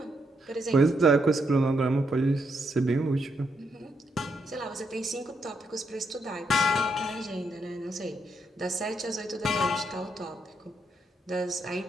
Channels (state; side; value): normal; both; correlation 0.79